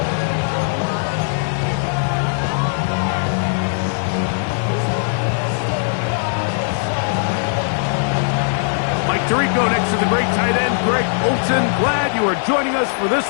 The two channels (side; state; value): right; silent; 56 dB below the other